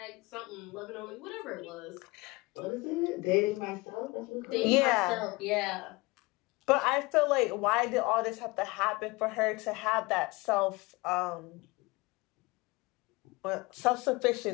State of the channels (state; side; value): quieter; right; 24.0 dB